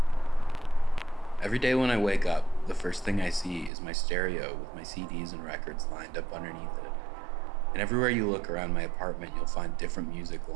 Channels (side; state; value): left; drops out; at 3.7 s